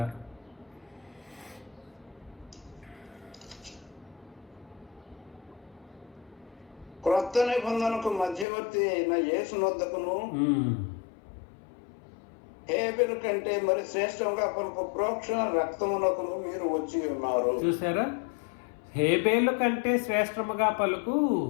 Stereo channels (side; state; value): right; drops out; at 8.5 s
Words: క్రొత్త నిబంధనకు మధ్యవర్తి అయిన యేసునొద్దకును హేబెలు కంటే మరి శ్రేష్టంగా పలుకు ప్రోక్షణ రక్తమునకును మీరు వచ్చి ఉన్నారు. చూసారా, హేబేలు కంటే శ్రేష్టముగా పలుకు